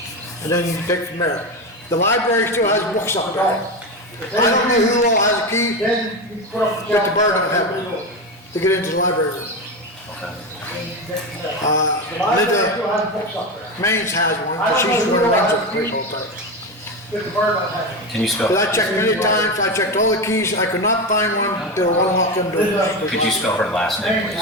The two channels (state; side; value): normal; both; correlation 0.18